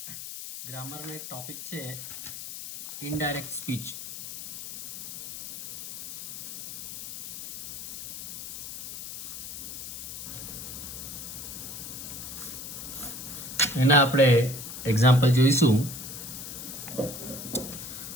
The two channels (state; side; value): noise; left; hiss, 9 dB below the sound